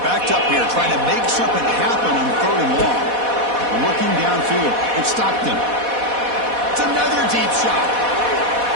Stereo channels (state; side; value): late; left; 4.1 ms